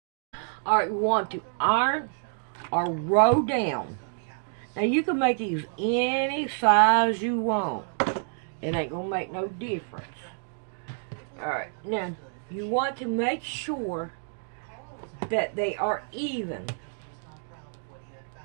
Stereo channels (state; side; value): silent; left; digital silence